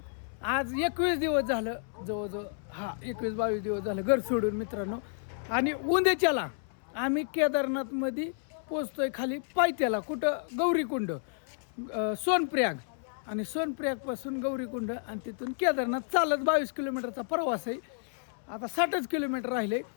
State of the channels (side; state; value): right; silent; 57 dB below the other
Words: आज 21 दिवस झालं जवळजवळ 21-22 दिवस झालं घर सोडून मित्रांनो. आणि उद्याच्याला आम्ही केदारनाथमध्ये पोचतोय खाली पायथ्याला. कुठं? गौरीकुंड, सोनप्रयाग. आणि सोनप्रयागपासून गौरीकुंड आणि तिथून केदारनाथ चालत 22 किलोमीटरचा प्रवास आहे. आता 60च किलोमीटर राहिले.